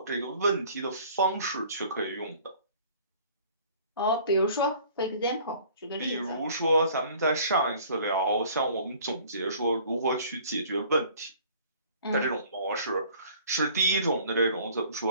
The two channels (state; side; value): inverted; both; correlation -0.52